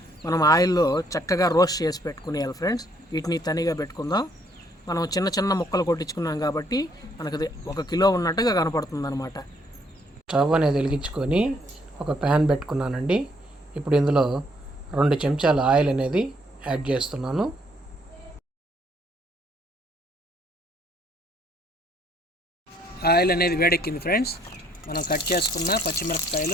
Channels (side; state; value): both; normal; correlation 0.67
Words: మనం ఆయిల్లో చక్కగా రోస్ట్ చేసి పెట్టుకునేయాలి ఫ్రెండ్స్. వీటిని తనిగా పెట్టుకుందాం. మనం చిన్న చిన్న ముక్కలు కొట్టించుకున్నాం కాబట్టి మనకు 1 కిలో ఉన్నట్టుగా కనపడుతుంది అనమాట. స్టవ్ అనేది వెలిగించుకొని ఒక ప్యాన్ పెట్టుకున్నానండి. ఇప్పుడు ఇందులో 2 చెంచాల ఆయిల్ అనేది యాడ్ చేస్తున్నాను. ఆయిల్ అనేది వేడెక్కింది ఫ్రెండ్స్. మనం కట్ చేసుకున్న